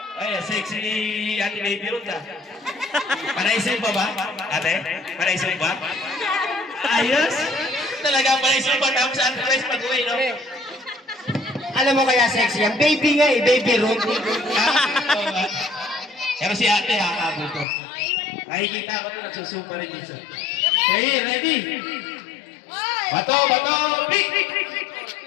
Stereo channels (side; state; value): right; drops out; at 17.7 s